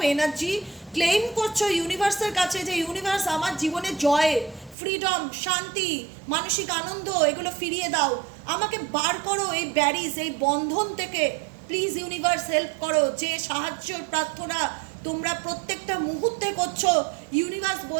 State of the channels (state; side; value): drops out; left; at 4.8 s